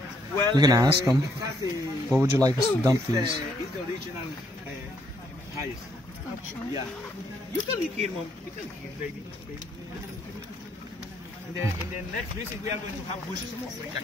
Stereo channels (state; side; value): normal; both; correlation 0.71